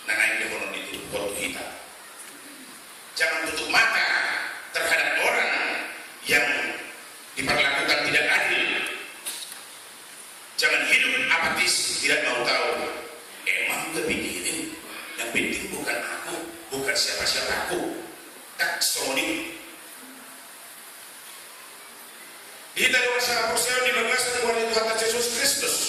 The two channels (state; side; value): identical; both; correlation 1.00